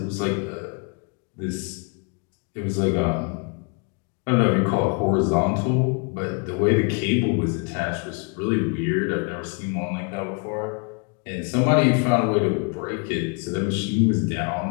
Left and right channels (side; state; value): right; quieter; 36.3 dB